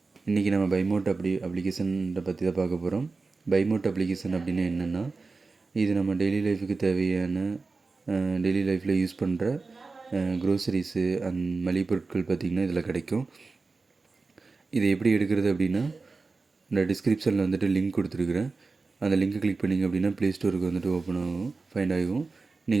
இன்றைக்கி நம்ம பைமோட் அப்ளிகேஷனை பற்றி தான் பார்க்க போகிறோம். பைமோட் அப்ளிகேஷன் அப்படின்னா என்னென்னா, இது நம்ம டெய்லி லைஃபுக்கு தேவையான டெய்லி லைஃப்பில் யூஸ் பண்ணுற க்ரோசரிஸு அண்ட் மளிகை பொருட்கள் பார்த்திங்கன்னா இதில் கிடைக்கும். இதை எப்படி எடுக்கிறது அப்படின்னா, இந்த டிஸ்கிரிப்ஷனில் வந்துட்டு லிங்க் கொடுத்துருக்குறேன். அந்த லிங்க்கை கிளிக் பண்ணிங்க அப்படின்னா ப்ளே ஸ்டோருக்கு வந்துட்டு ஓப்பன் ஆகும், ஃபைண்ட் ஆகும்.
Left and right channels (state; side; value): quieter; left; 4.0 dB